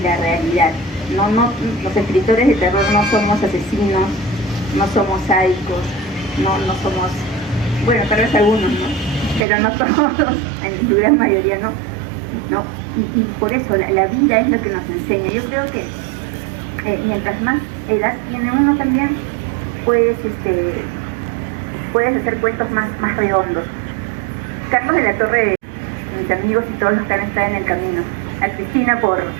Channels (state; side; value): drops out; left; at 9.4 s